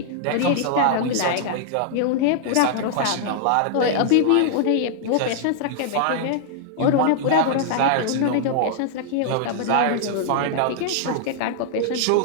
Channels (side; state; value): both; different; correlation -0.01